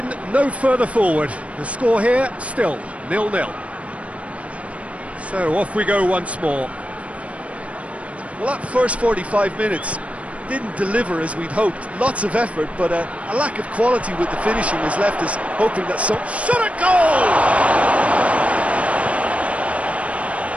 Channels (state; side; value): late; left; 0.064 ms